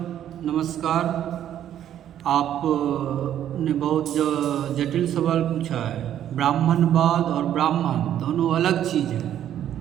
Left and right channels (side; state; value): left; quieter; 10.8 dB